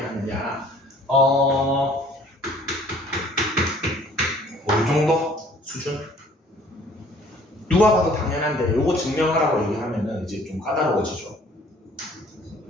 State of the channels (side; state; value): both; normal; correlation 0.55